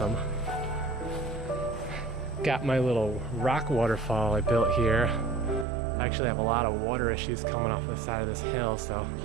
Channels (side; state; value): left; drops out; at 5.7 s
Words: Got my little rock waterfall I built here. I actually have a lot of water issues coming off the side of this hill, so